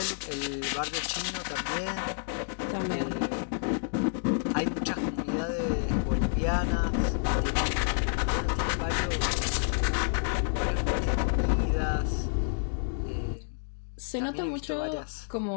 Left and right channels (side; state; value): right; silent; digital silence